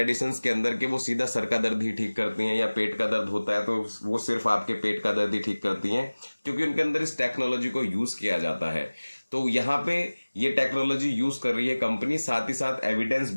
के अंदर के वो सीधा सर का दर्द ही ठीक करती हैं, या पेट का दर्द होता है तो वो सिर्फ आपके पेट का दर्द ही ठीक करती हैं, क्योंकि उनके अंदर इस टेक्नोलॉजी को यूज किया जाता है। तो यहाँ पे ये टेक्नोलॉजी यूज कर रही है कंपनी। साथ ही साथ evidence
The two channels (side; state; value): both; inverted; correlation -1.00